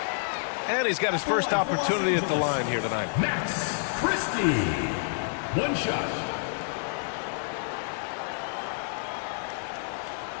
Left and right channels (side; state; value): right; silent; digital silence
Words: And he's got his first opportunity at the line here tonight. Max Christie. 1 shot.